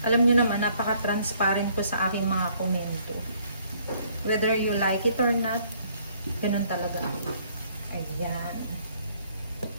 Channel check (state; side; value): inverted; both; correlation -0.63